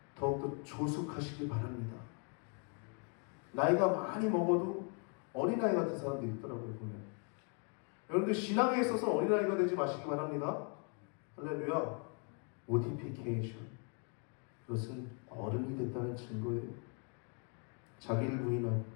더욱더 조숙하시길 바랍니다. 나이가 많이 먹어도 어린아이 같은 사람들이 있더라고요, 보면. 여러분들 신앙에 있어서 어린아이가 되지 마시기 바랍니다. 할렐루야. 모티피케이션, 그것은 어른이 됐다는 증거예요. 자기를 부인하고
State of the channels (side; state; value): right; quieter; 39.3 dB